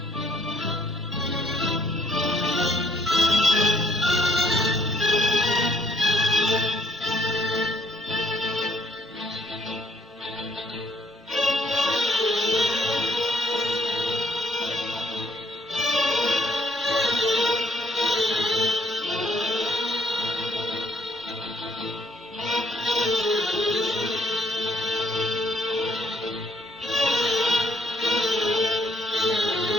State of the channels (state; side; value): normal; both; correlation 0.67